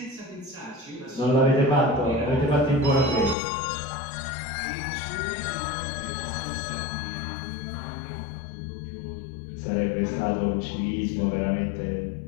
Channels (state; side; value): drops out; right; at 3.4 s